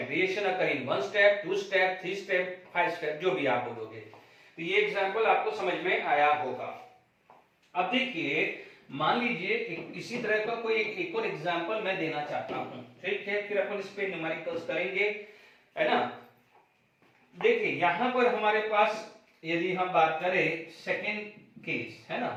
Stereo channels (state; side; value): identical; both; correlation 1.00